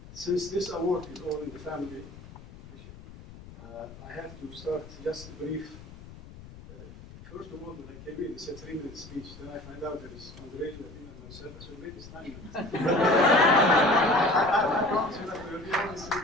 Since this award is all in the family, I have to start just brief. First of all, when I came in, they said 3-minute speech. Then I find out there is Andre, Nabil, and myself. So maybe it's 9 minutes. I promise you that there will be only 3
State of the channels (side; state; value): left; noise; rumble, 17 dB below the sound